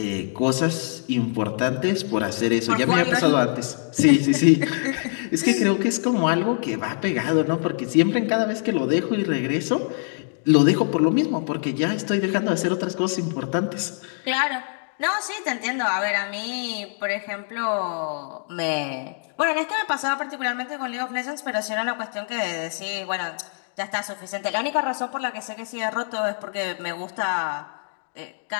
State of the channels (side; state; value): right; silent; digital silence